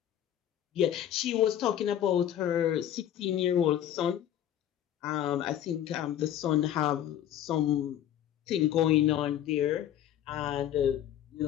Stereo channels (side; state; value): right; quieter; 11.0 dB